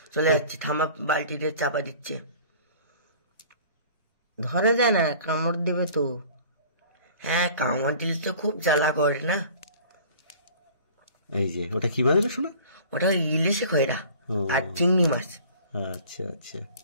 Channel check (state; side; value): inverted; both; correlation -0.47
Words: চলে যাচ্ছে, ঠাম্মা বালতিতে চাপা দিচ্ছে। ধরে যায় না, কামড় দিবে তো। হ্যাঁ, কামড় দিলে তো খুব জ্বালা করে না। এই যে ওটা কি মাছ রে শোনা? ওটা ইলিশে খয়রা ও। আর চিংড়ি মাছ। আচ্ছা আচ্ছা।